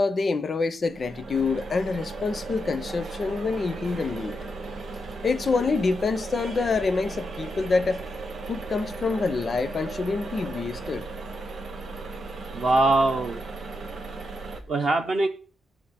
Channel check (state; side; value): normal; both; correlation 0.85